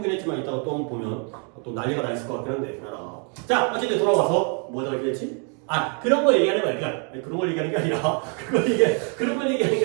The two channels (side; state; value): left; quieter; 39.2 dB